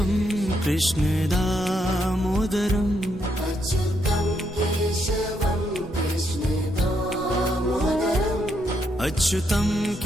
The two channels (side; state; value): both; normal; correlation 0.77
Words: कृष्ण दामोदरम् अच्युतं केशवं कृष्ण दामोदरम् अच्युतं